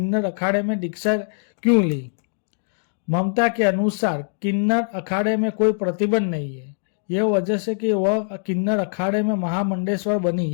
अखाड़े में दीक्षा क्यों ली। ममता के अनुसार किन्नर अखाड़े में कोई प्रतिबंध नहीं है, यह वजह से कि वह किन्नर अखाड़े में महामंडेश्वर बनी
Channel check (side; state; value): right; silent; digital silence